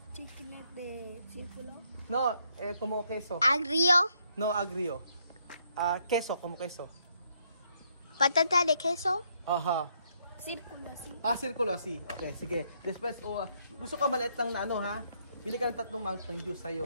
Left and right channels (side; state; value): both; inverted; correlation -0.73